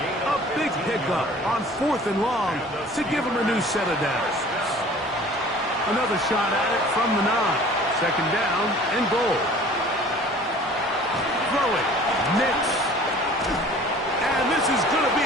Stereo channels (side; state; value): both; normal; correlation 0.48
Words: A big pickup on 4th and long to give him a new set of downs. Another shot at it from the 9. 2nd down and goal. Throwing. Nix. And this is going to be